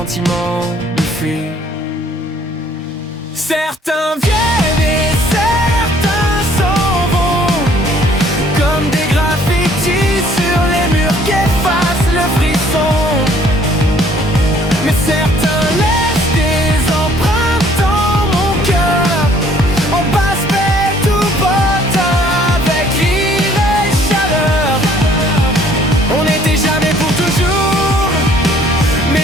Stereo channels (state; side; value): normal; both; correlation 0.59